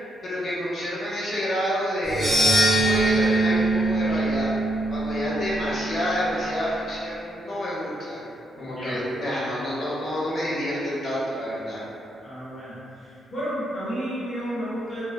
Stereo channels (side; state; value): both; normal; correlation 0.77